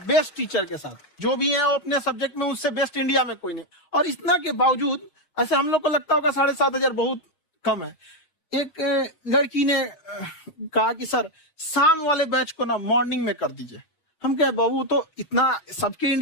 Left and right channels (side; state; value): right; late; 6.3 ms